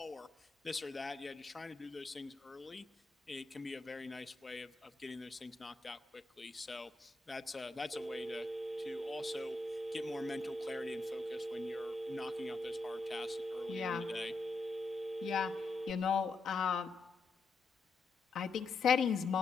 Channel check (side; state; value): right; quieter; 3.6 dB